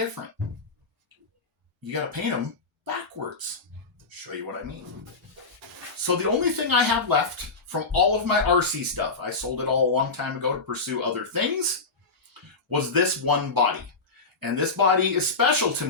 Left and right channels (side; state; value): right; quieter; 3.9 dB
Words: You got to paint them backwards. I'll show you what I mean. So the only thing I have left from all of my RC stuff, I sold it all a long time ago to pursue other things, was this one body. And this body is special to